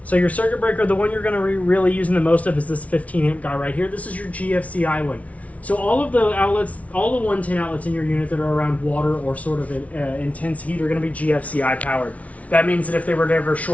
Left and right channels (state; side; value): late; right; 0.067 ms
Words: So your circuit breaker, the one you're going to really using the most of is this 15 amp guy right here. This is your GFCI one. So all of the outlets, all the 110 outlets in your unit that are around water or sort of intense heat are going to be GFCI powered. That means that if they were to ever